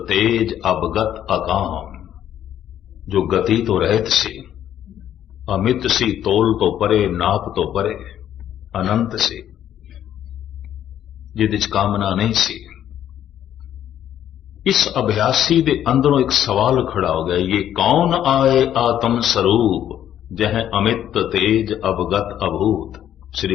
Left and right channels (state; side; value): quieter; right; 10.8 dB